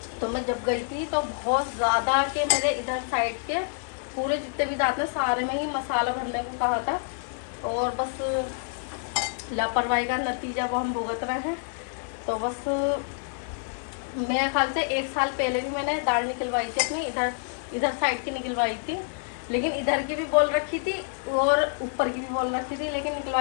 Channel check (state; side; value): silent; right; 60 dB below the other